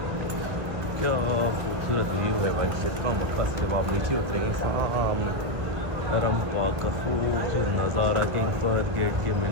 क्या खूबसूरत व्यू है भाई शिरका मक्का से। जब आप नीचे उतरेंगे सामने हरम पाक का खूबसूरत नज़ारा, किंग फहद गेट के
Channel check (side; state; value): left; late; 1.7 ms